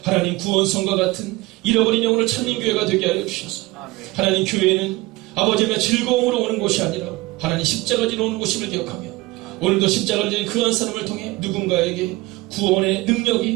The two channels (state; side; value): quieter; left; 20.7 dB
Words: 하나님, 구원성과 같은 잃어버린 영혼을 찾는 교회가 되게 하여 주셔서 하나님, 교회는 아버지의 즐거움으로 오는 곳이 아니라 하나님 십자가 지러 오는 곳임을 기억하며 오늘도 십자가를 지는 그 한 사람을 통해 누군가에게 구원의